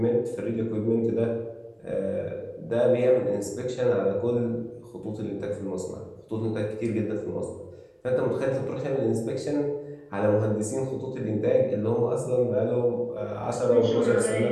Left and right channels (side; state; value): both; identical; correlation 1.00